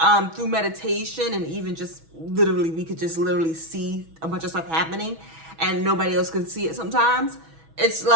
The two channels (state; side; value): late; left; 6.2 ms